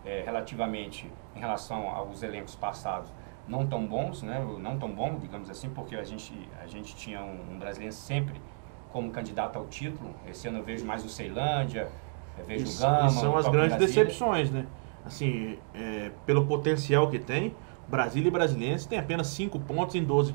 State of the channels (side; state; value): left; silent; 57 dB below the other